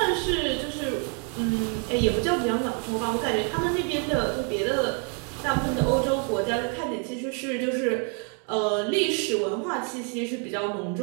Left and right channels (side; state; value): left; quieter; 39.6 dB